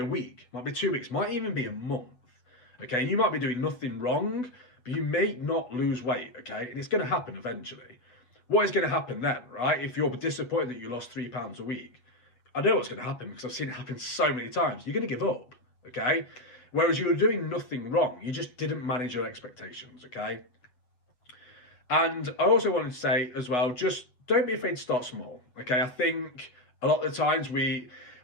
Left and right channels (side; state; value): right; late; 8.1 ms